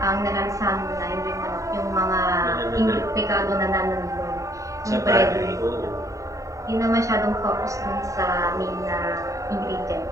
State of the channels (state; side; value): late; left; 0.16 ms